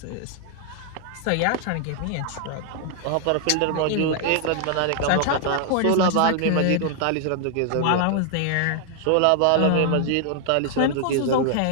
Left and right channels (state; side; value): different; both; correlation 0.00